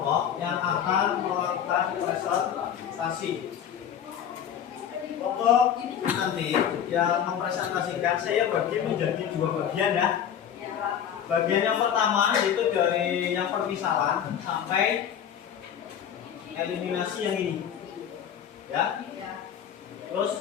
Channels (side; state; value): right; quieter; 9.0 dB